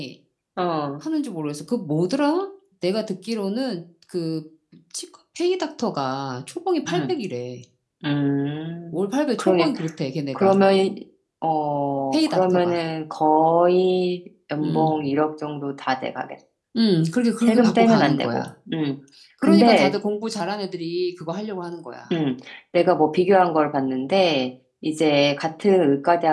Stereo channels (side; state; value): both; identical; correlation 1.00